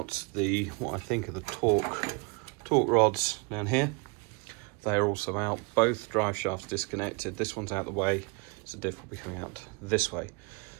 The, what I think are the torque rods down here, they are also out. Both drive shafts disconnected. This one's out the way, so the diff will be coming out this way.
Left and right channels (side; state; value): left; quieter; 30.6 dB